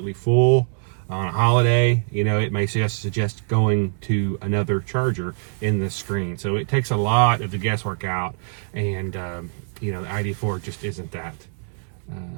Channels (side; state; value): left; silent; digital silence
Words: full on a holiday, it may suggest going to another charger in this screen. So it takes a lot of the guesswork out, and the ID.4 just isn't that